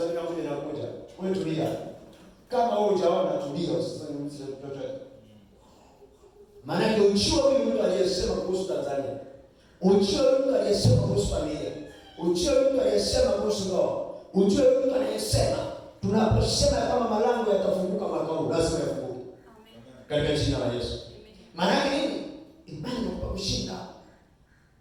moja inakuja, wewe tulia. Kama wewe hujaona tulia, usiseme chochote. Maana yake uchiwa huyu mtu aliyesema kuhusu Tanzania, uchiwa huyu mtu aliyesema kuhusu familia, uchiwa huyu mtu aliyesema kuhusu ndoa, uchiwa huyu mtu aliyesema tunaposema kama malango yatafunguka mwaka huu, lazima yafunguke. Amen. Katika jina la Yesu. Maana yake nini? Imani inakupa kushinda.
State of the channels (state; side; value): identical; both; correlation 1.00